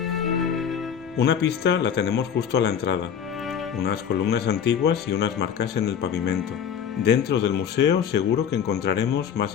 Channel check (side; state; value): right; quieter; 8.1 dB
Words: Una pista la tenemos justo a la entrada, unas columnas antiguas y unas marcas en el pavimento. Dentro del museo seguro que encontraremos más